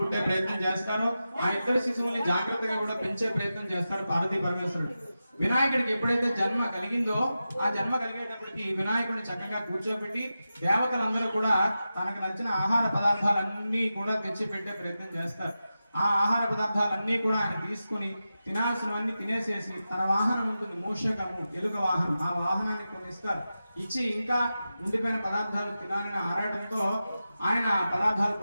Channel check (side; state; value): both; inverted; correlation -0.92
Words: ప్రయత్నం చేస్తారో ఆ ఇద్దరు శిశువుల్ని జాగ్రత్తగా కూడా పెంచే ప్రయత్నం చేస్తారు పార్వతీ పరమేశ్వరుడు. వినాయకుడికి ఎప్పుడైతే జన్మ కలిగిందో ఆ జన్మ కలిగేటప్పటికి వినాయకుడిని చక్కగా కూర్చోబెట్టి దేవతలందరూ కూడా తనకు నచ్చిన ఆహార పదార్థాలన్నీ కూడా తెచ్చి పెట్టే ప్రయత్నం చేస్తారు. ఆ ఆహార పదార్థాలన్నీ కూడా ఆయన తీసుకుని తినాల్సినవన్నీ తినేసేసి తన వాహనం ఉంటుంది, మూషకము, ఎలుక వాహనం, ఆ వాహనాన్ని కొన్ని ఇస్తారు. ఇచ్చి ఇంకా ఉండిపోయిన పదార్థాలు తినాలని ఆరాటంతో ఆయన పదార్థాలు